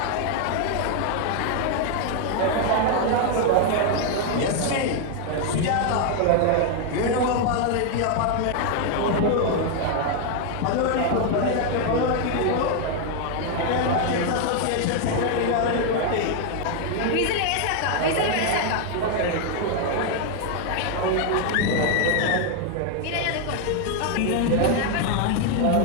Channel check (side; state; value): both; different; correlation 0.00